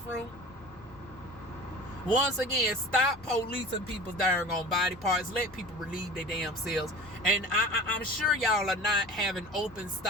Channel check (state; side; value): noise; left; hum, 24 dB below the sound